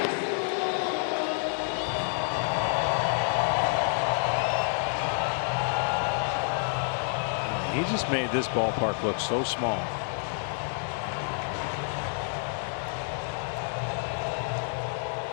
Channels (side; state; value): right; silent; digital silence